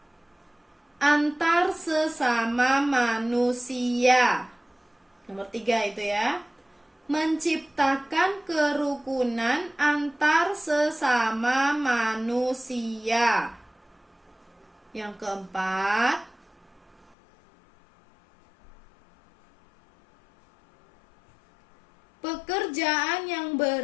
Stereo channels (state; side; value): drops out; right; at 17.2 s